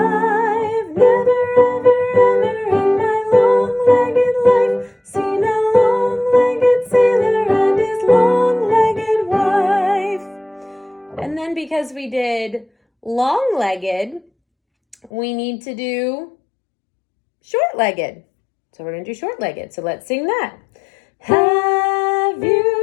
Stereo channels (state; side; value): drops out; right; at 15.1 s